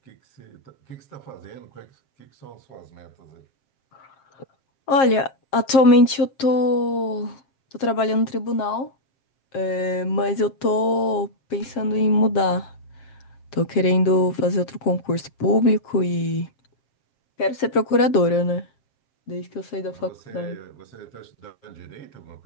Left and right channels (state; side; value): late; right; 7.5 ms